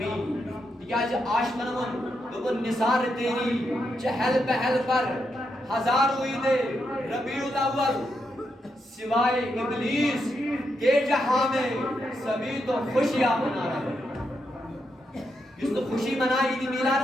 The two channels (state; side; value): normal; both; correlation 0.83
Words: تکیاز عاشقن ون دوپن نثار تیری چہل پہل پر ہزاروں عید ربیع الاول سوائے ابلیس کے جہاں میں سبھی تو خوشیاں منا رہے جس تو خوشی منائی عید